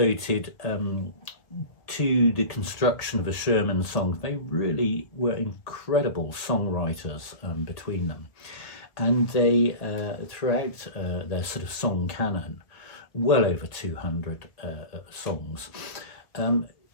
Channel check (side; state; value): right; late; 1.7 ms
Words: to the construction of the Sherman songs. They really were incredible songwriters between them. And they, throughout their sort of song canon, well over 200 songs.